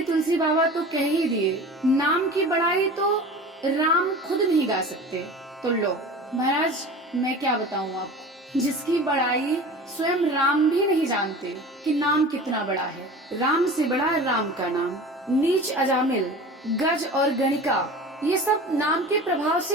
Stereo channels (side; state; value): both; normal; correlation 0.37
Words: तुलसी बाबा तो कह ही दिए, नाम की बड़ाई तो राम खुद नहीं गा सकते। तो लो महाराज, मैं क्या बताऊं आपको, जिसकी बड़ाई स्वयं राम भी नहीं जानते कि नाम कितना बड़ा है। राम से बड़ा राम का नाम। नीच अजामिल, गज और गणिका, ये सब नाम के प्रभाव